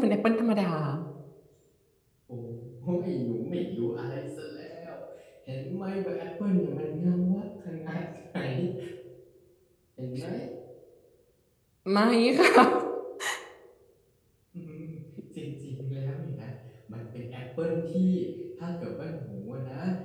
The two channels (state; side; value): identical; both; correlation 1.00